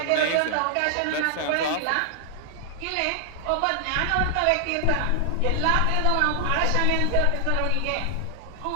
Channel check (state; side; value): different; both; correlation 0.00